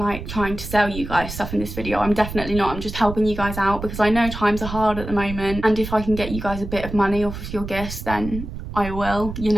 trying to sell you guys stuff in this video. I'm definitely not. I'm just helping you guys out because I know times are hard at the moment, and if I can get you guys a bit of money off of your gifts, then I will, you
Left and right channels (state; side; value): noise; right; rumble, 9 dB below the sound